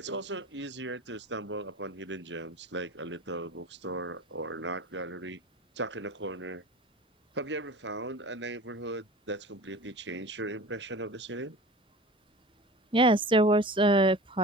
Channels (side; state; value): both; normal; correlation 0.38